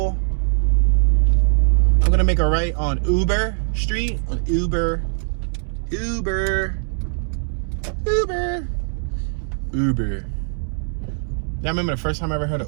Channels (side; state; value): left; silent; digital silence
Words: I'm gonna make a right on Uber Street, on Uber. Yeah, I remember the first time I ever heard